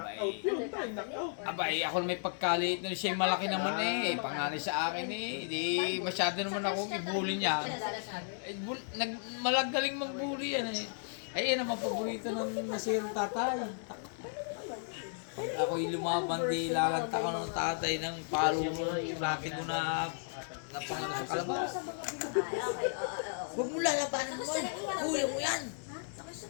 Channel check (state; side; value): silent; right; digital silence